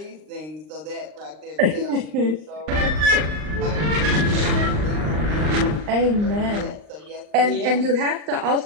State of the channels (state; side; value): late; left; 39 ms